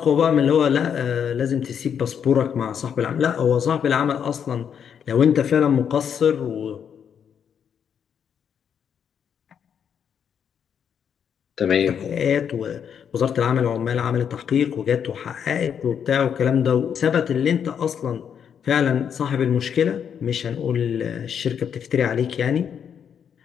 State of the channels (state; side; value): quieter; right; 7.9 dB